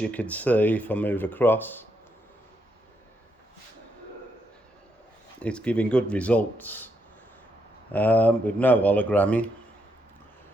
you can see, if I move across, it's giving good results with no hologramming,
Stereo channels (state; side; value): normal; both; correlation 0.78